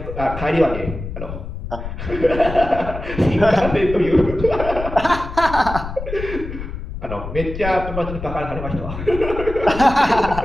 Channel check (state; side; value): noise; left; rumble, 8 dB below the sound